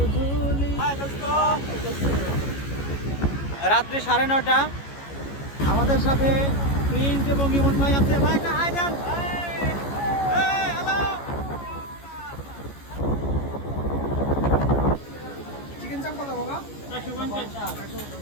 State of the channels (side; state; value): right; late; 14 ms